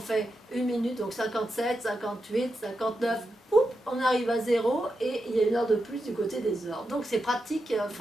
une minute, donc 57, 58, 59, on arrive à 0, et il y a une heure de plus du côté des heures. Donc c'est pratique,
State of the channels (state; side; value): normal; both; correlation 0.87